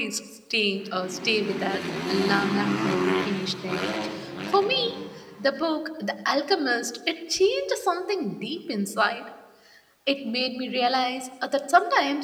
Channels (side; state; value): both; identical; correlation 1.00